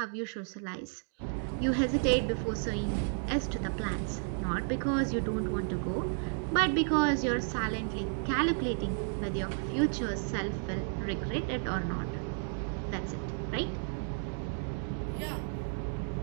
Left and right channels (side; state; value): left; silent; 56 dB below the other